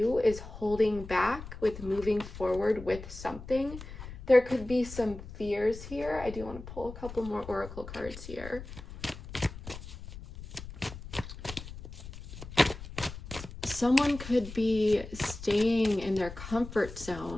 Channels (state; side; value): noise; left; rumble, 13 dB below the sound